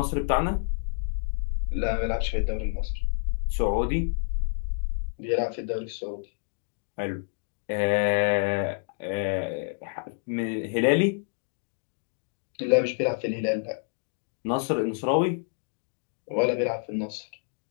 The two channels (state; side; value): silent; right; 59 dB below the other